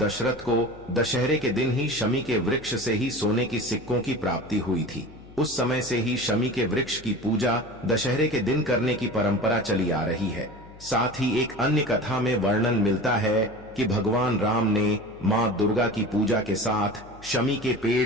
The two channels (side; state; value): left; noise; hum, 21 dB below the sound